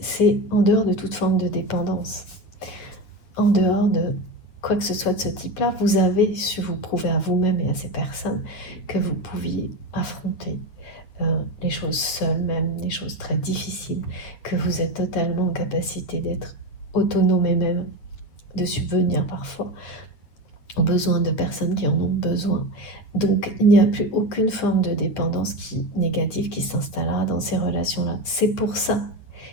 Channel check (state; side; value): late; right; 9.2 ms